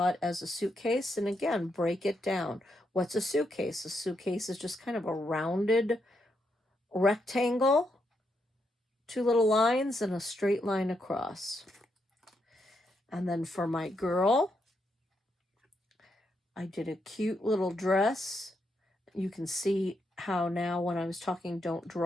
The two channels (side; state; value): both; normal; correlation 0.80